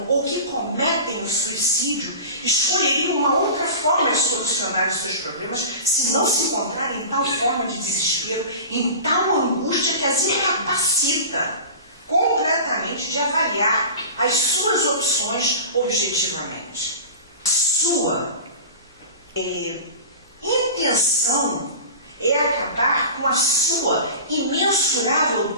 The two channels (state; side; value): inverted; both; correlation -0.34